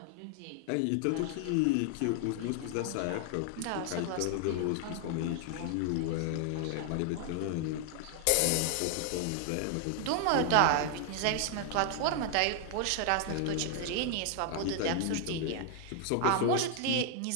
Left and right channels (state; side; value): different; both; correlation 0.00